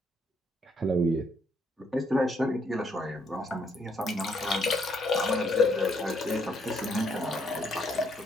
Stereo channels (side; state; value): both; normal; correlation 0.71